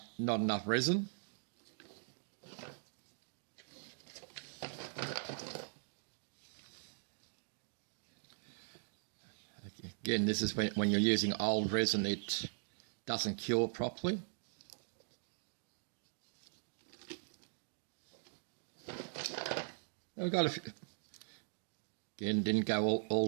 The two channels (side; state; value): left; silent; digital silence